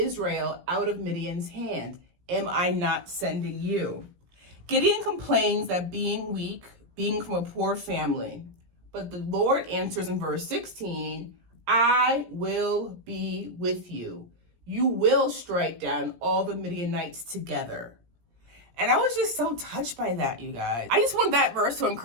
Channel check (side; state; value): left; late; 17 ms